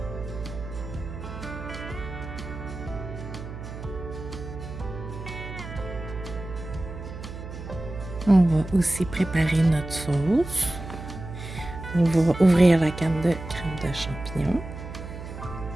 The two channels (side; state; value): right; noise; hum, 10 dB below the sound